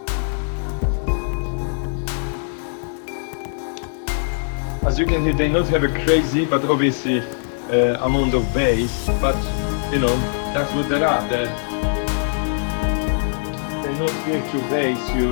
As you can hear, they not have a crazy, but obviously amount of bass, but you know, that's what they are. They're not here to bass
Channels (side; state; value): right; silent; digital silence